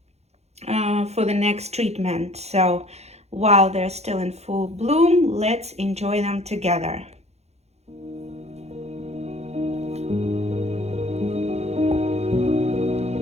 for the next treatment. So while they're still in full bloom, let's enjoy them together.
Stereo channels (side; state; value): left; late; 0.31 ms